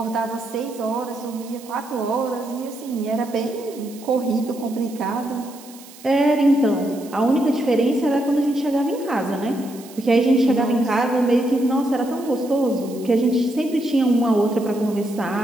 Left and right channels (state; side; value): noise; right; hiss, 20 dB below the sound